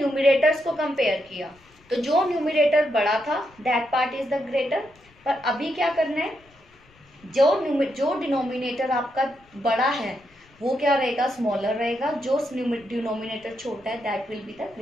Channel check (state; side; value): noise; left; rumble, 30 dB below the sound